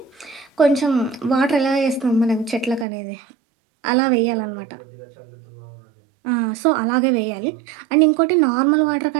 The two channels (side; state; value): left; drops out; at 2.9 s